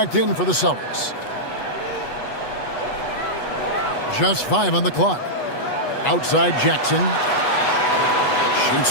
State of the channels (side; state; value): right; late; 8.2 ms